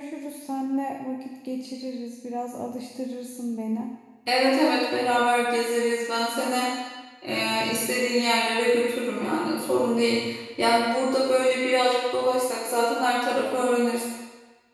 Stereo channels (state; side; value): identical; both; correlation 1.00